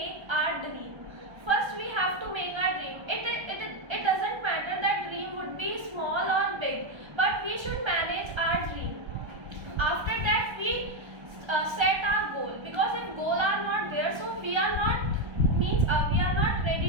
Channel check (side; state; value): left; late; 1.2 ms